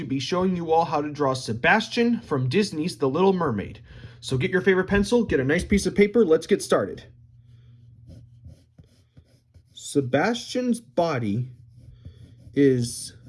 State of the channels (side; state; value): both; identical; correlation 1.00